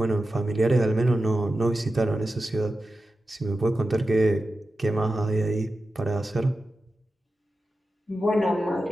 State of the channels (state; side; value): normal; both; correlation 0.92